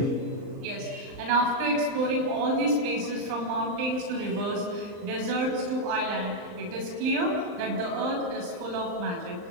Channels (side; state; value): left; late; 39 ms